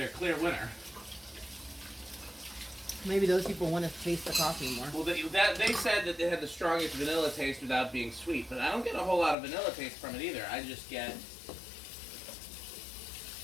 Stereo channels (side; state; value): right; drops out; at 9.3 s